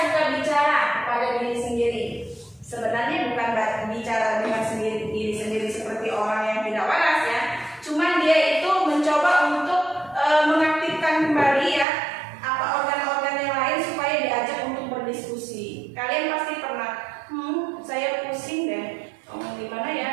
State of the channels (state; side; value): drops out; left; at 11.9 s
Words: bicara kepada diri sendiri. Sebenarnya bukan bicara dengan diri sendiri seperti orang yang tidak waras ya. Cuman dia itu mencoba untuk mengaktifkan kembali ya apa organ-organ yang lain supaya diajak untuk berdiskusi. Kalian pasti pernah, saya pusing deh. Gimana